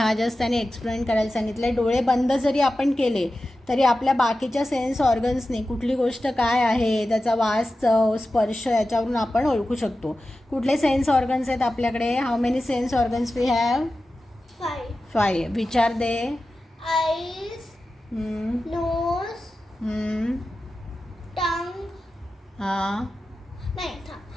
just त्याने explain करायला सांगितलं. डोळे बंद जरी आपण केले तरी आपल्या बाकीच्या सेन्स ऑर्गन्सनी कुठली गोष्ट काय आहे, त्याचा वास, चव, स्पर्श याच्यावरून आपण ओळखू शकतो. कुठले सेन्स ऑर्गन्स आहेत आपल्याकडे? How many sense organs we have? 5. Which are they? Eyes, nose, tongue. हां. नाही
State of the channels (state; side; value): normal; both; correlation 0.93